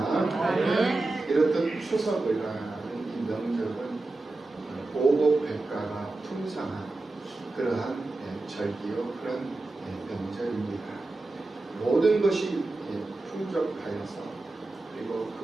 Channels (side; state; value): left; quieter; 3.1 dB